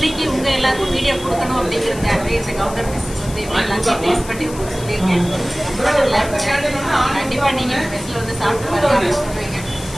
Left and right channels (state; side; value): noise; left; hiss, 15 dB below the sound